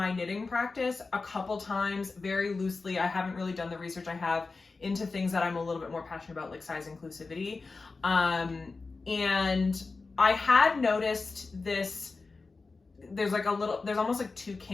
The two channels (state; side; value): quieter; right; 4.0 dB